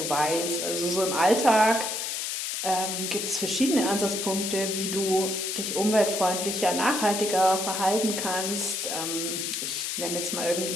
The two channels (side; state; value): left; noise; hiss, 2 dB below the sound